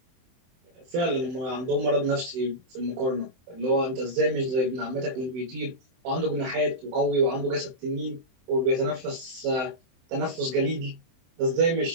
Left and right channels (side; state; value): left; late; 23 ms